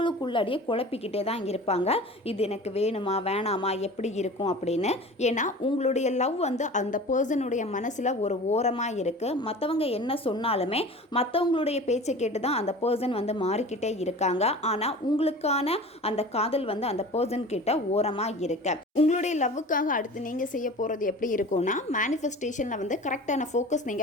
குழப்பிக்கிட்டே தான் இருப்பாங்க. இது எனக்கு வேணுமா வேணாமா எப்படி இருக்கும் அப்படின்னு. ஏன்னா உங்களுடைய லவ் வந்து அந்த பர்சனுடைய மனசில் ஒரு ஓரமாக இருக்குது. மற்றவங்க என்ன சொன்னாலுமே மற்றவங்களுடைய பேச்சை கேட்டு தான் அந்த பர்சன் வந்து மாறிக்கிட்டே இருக்காங்க. ஆனால் உங்களுக்கான அந்த காதல் வந்து அந்த பர்சன் கிட்ட ஓரமாக இருக்கு. உங்களுடைய லவ்வுக்காக அடுத்து நீங்கள் செய்ய போகிறது எப்படி இருக்கும்னா, மேனிஃபெஸ்டேஷனில் வந்து கரெக்டான ஃபோக்கஸ்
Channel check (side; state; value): both; normal; correlation 0.38